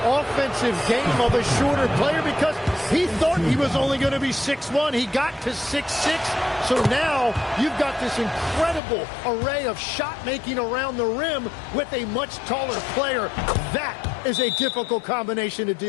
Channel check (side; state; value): right; drops out; at 8.8 s